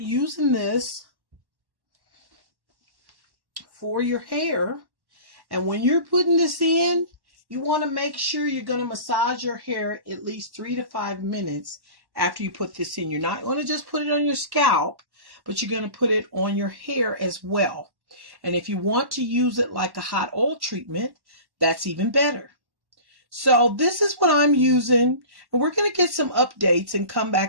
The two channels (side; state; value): left; late; 1.1 ms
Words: this for your hair. And when you're putting this in, you want to make sure you're going to massage your hair at least 3 to 5 minutes after you put this in. You're not going to just put it on your scalp, but you're going to put it on your hair as well. And if you want to use it like a hot oil treatment, that's even better. So this is what I'm using, and we're going to get some updates and come